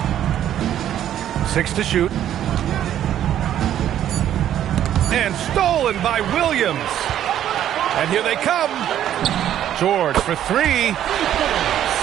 6 to shoot. And stolen by Williams. And here they come. George for 3.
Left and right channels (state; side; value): quieter; left; 11.1 dB